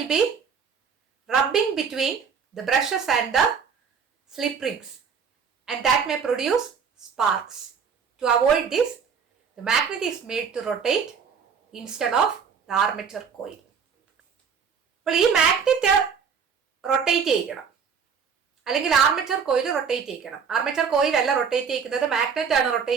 be rubbing between the brushes and the slip rings, and that may produce sparks. To avoid this, the magnet is made to rotate instead of the armature coil. അപ്പോൾ ഈ മാഗ്നറ്റ് റൊട്ടേറ്റ് ചെയ്യണം, അല്ലെങ്കിൽ ആർമേച്ചർ കോയിൽ റൊട്ടേറ്റ് ചെയ്യിക്കണം. ആർമേച്ചർ കോയിൽ അല്ല റൊട്ടേറ്റ് ചെയ്യിക്കുന്നത്, മാഗ്നറ്റ് ആണ്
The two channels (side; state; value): left; quieter; 6.4 dB